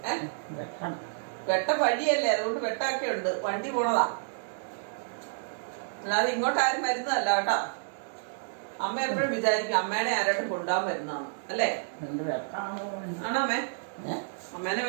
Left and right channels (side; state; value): left; silent; digital silence